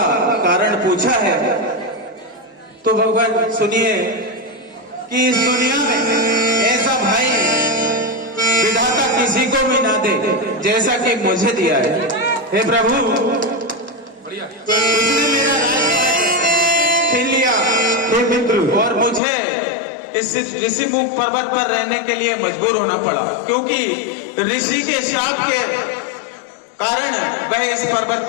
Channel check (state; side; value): drops out; right; at 19.2 s